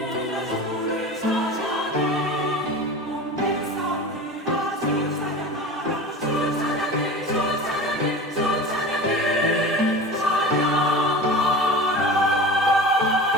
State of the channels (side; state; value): both; normal; correlation 0.33